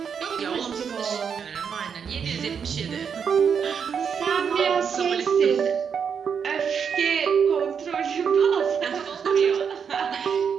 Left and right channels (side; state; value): left; quieter; 6.9 dB